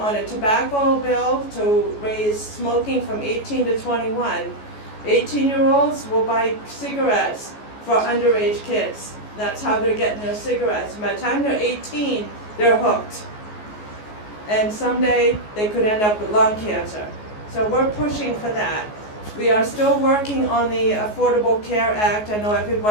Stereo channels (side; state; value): right; late; 14 ms